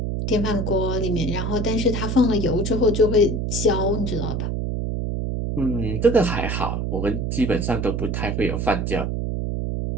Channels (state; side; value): noise; right; hum, 1 dB below the sound